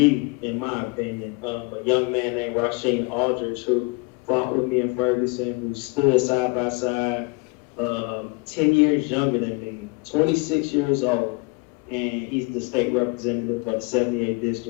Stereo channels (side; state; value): right; quieter; 29.3 dB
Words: in my opinion. A young man named Rasheen Aldridge, who fought with me in Ferguson, who stood side by side, 10 years younger than me, 26 years old. And he's the state representative of the 78th